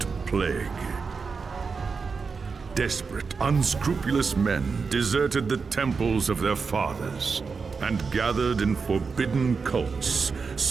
plague. Desperate, unscrupulous men deserted the temples of their fathers and gathered in forbidden cults,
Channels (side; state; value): left; quieter; 5.0 dB